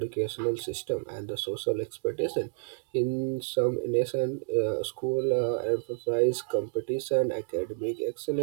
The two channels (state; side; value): silent; left; digital silence